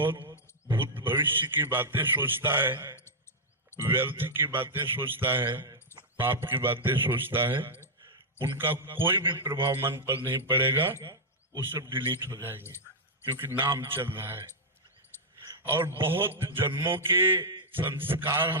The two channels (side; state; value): both; normal; correlation -0.05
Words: भूत भविष्य की बातें सोचता है, व्यर्थ की बातें सोचता है, पाप की बातें सोचता है, उनका कोई भी प्रभाव मन पर नहीं पड़ेगा। वो सब डिलीट हो जाएंगे क्योंकि नाम चल रहा है। और बहुत जन्मों के संस्कार